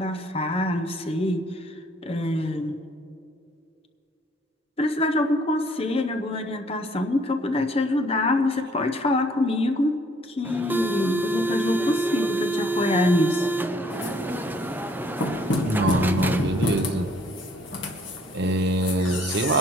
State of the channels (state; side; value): normal; both; correlation 0.62